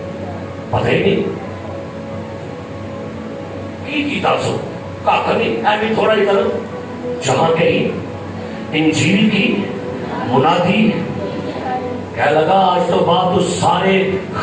پتہ ہی نہیں کی تاسو کاکا نہیں، ایمی تھوڑا ہی طرف جہاں کہیں انجیل کی منادی کہہ لگا آج تو بات تو سارے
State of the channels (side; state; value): both; identical; correlation 1.00